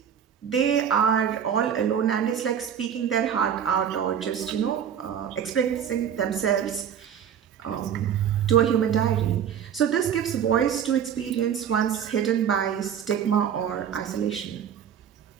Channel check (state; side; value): quieter; left; 8.6 dB